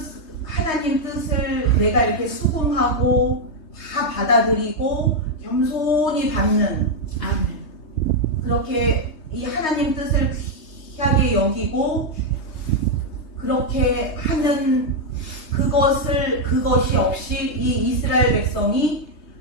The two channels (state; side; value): late; right; 3.2 ms